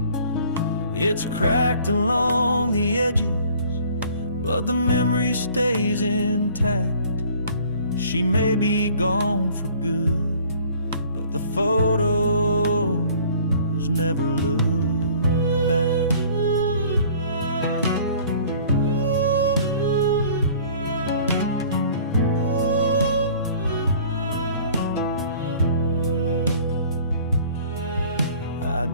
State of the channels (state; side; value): inverted; both; correlation -0.52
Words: It's cracked along the edges, but the memory stays intact. She may be gone for good, but the photos never look back. I